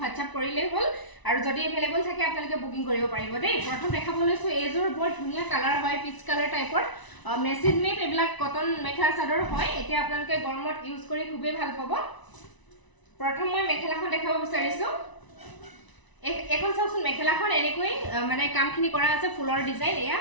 WhatsApp কৰিলেই হ'ল আৰু যদি এভেইলেবল থাকে আপোনালোকে বুকিং কৰিব পাৰিব দেই প্ৰথম দেখাব লৈছো এজোৰ বৰ ধুনিয়া কালাৰ হয় পিচ কালাৰ টাইপৰ machine made এবিলাক cotton mekhela chador হয় এতিয়া আপোনালোকে গৰমত ইউজ কৰি খুবেই ভাল পাব প্ৰথম মই মেখেলাখন দেখাব বিচাৰিছো এখন চাওকচোন মেখেলাখন এনেকৈ মানে কামখিনি কৰা আছে ফুলৰ ডিজাইন এয়া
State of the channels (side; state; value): right; late; 1.0 ms